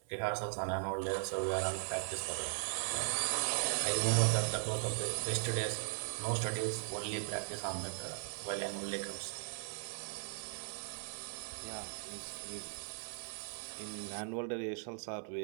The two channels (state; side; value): silent; left; 52 dB below the other